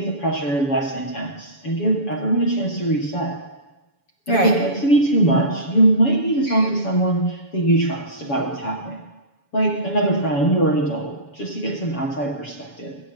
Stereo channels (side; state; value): right; late; 7.1 ms